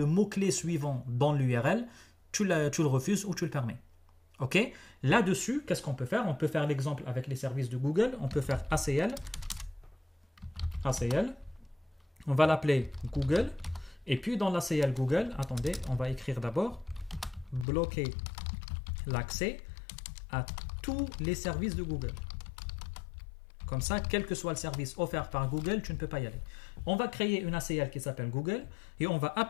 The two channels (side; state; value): right; drops out; at 17.7 s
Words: mot-clé suivant dans l'URL, tu le refuses ou tu le permets. Ok? Là-dessus, qu'est-ce qu'on peut faire? On peut faire l'exemple avec les services de Google. On peut faire ACL. On va l'appeler Google. Et puis dans l'ACL Google, attendez, on va écrire d'abord bloquer l'accès à tous les services de Google. Comme ça, quel que soit le service offert par Google, tu ne peux pas y aller. On va créer une ACL qui s'appelle Google et on va